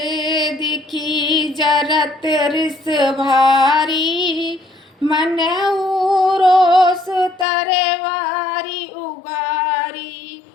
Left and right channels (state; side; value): drops out; right; at 7.5 s